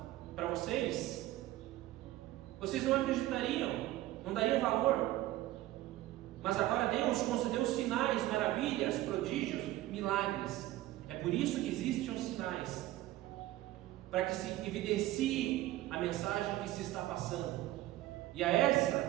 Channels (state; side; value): quieter; left; 15.9 dB